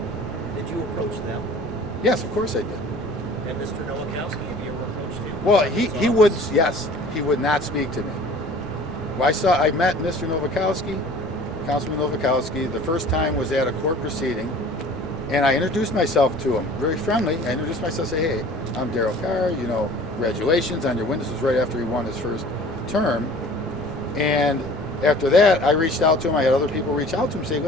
Did you approach them? Yes, of course I did. And Mr. Nowakowski, have you ever approached him? Well, he would, yes, he would not speak to me. Well, I met Mr. Nowakowski, Councilman Nowakowski. The first time was at a court proceeding, and I introduced myself to him, very friendly. I introduced myself, say, hey, I'm Darryl Carr, you know, congratulations on your win. This was right after he won his first term. And after that, I reached out to him. I had other people reach out to him, say,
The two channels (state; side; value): normal; both; correlation 0.46